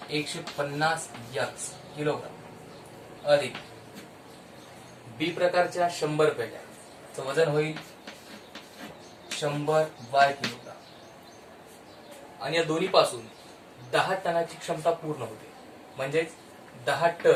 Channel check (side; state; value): both; identical; correlation 1.00